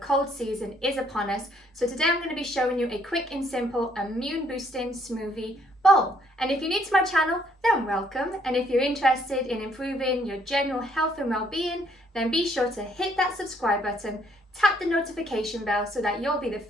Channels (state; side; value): normal; both; correlation 0.67